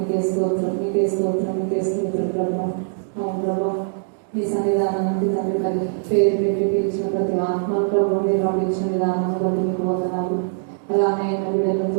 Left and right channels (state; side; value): silent; left; digital silence